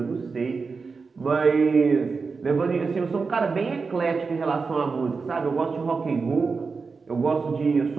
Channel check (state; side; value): quieter; left; 4.7 dB